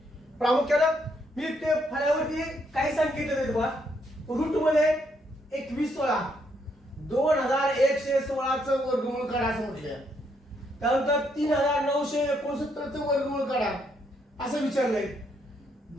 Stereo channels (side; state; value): both; normal; correlation 0.74